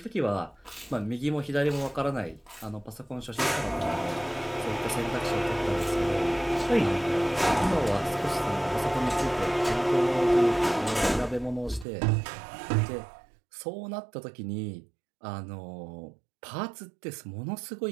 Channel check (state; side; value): drops out; left; at 11.9 s